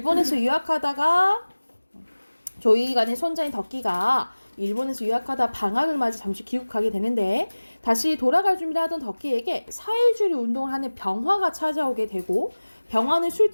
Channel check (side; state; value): both; inverted; correlation -1.00